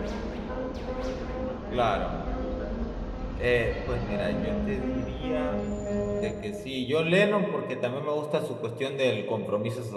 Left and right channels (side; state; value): both; identical; correlation 1.00